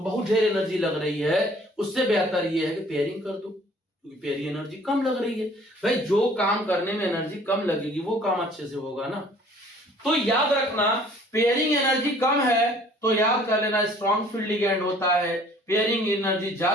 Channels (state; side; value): normal; both; correlation 0.54